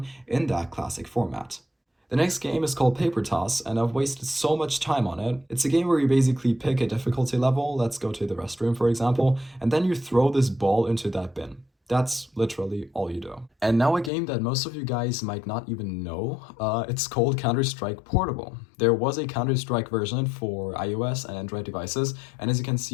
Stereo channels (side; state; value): right; drops out; at 14.1 s